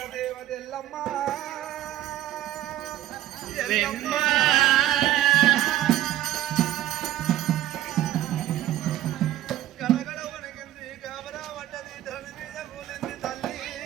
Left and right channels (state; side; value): quieter; left; 13.6 dB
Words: దేవదెల్లమ్మ గడగడ వణికింది గాబరా పడ్డది ధరణి మీద కూలింది తల్లి